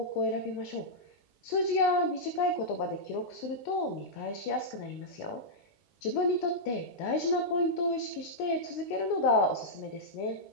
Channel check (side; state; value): right; late; 19 ms